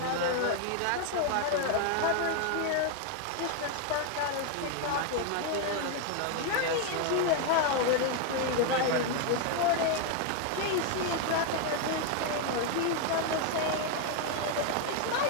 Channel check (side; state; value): both; different; correlation 0.00